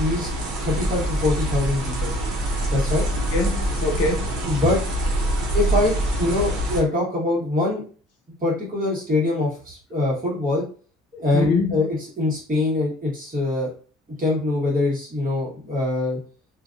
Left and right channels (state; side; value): normal; both; correlation 0.55